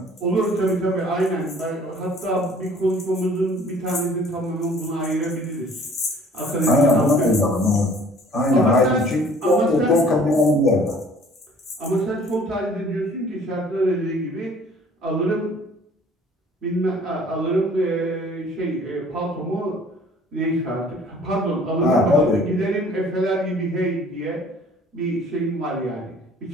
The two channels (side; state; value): both; normal; correlation 0.53